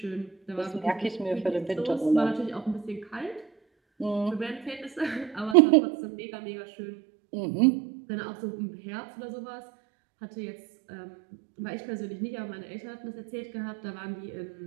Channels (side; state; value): left; drops out; at 5.6 s